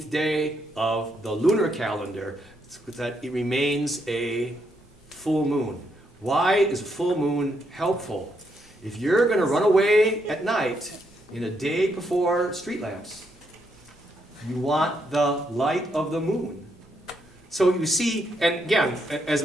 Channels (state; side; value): normal; both; correlation 0.77